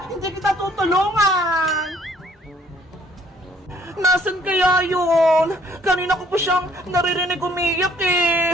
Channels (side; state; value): both; normal; correlation 0.61